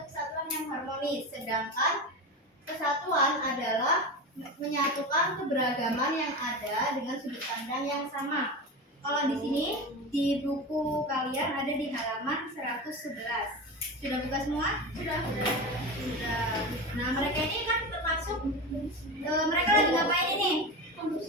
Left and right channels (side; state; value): both; normal; correlation 0.24